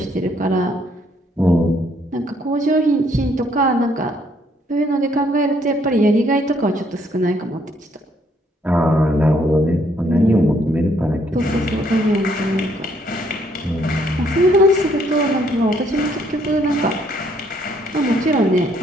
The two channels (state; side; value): normal; both; correlation 0.68